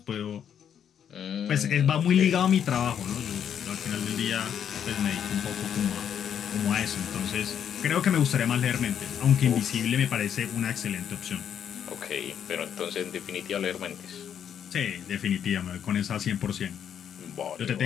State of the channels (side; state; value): right; quieter; 8.8 dB